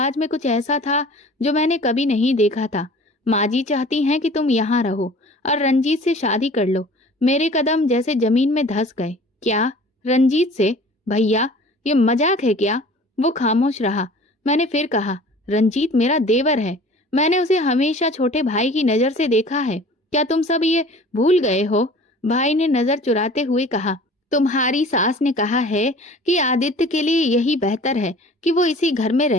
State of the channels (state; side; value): normal; both; correlation 0.46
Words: में कुछ ऐसा था जो मैंने कभी नहीं देखा था। माँ जी चाहती हैं कि तुम यहाँ रहो और रंजीत से शादी कर लो। मेरे कदम जैसे जमीन में धंस गए। क्या? रंजीत से? भैया, ये मजाक है क्या? वो खामोश रहा। मैंने फिर कहा, रंजीत मेरा देवर है। मैंने उसे हमेशा छोटे भाई की नजर से देखा है। क्या तुम सब ये भूल गए हो? भाई ने नजर चुराते हुए कहा, तुम्हारी सास ने कहा है कि आदित्य के लिए यही बेहतर है कि वो इसी घर में